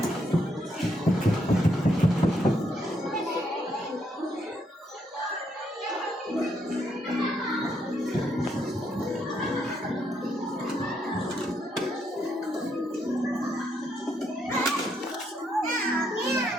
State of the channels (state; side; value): normal; both; correlation 0.76